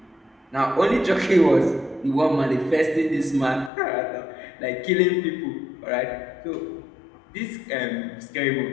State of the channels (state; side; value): drops out; right; at 3.7 s